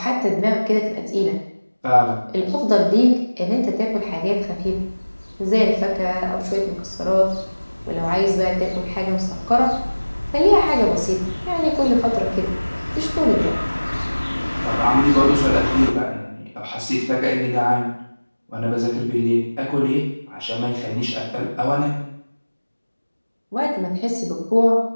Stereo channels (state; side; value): inverted; both; correlation -1.00